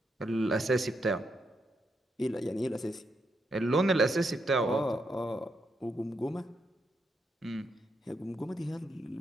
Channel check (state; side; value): normal; both; correlation 0.81